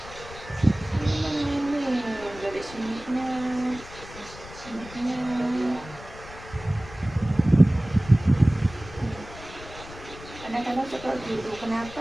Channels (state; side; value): noise; left; rumble, 16 dB below the sound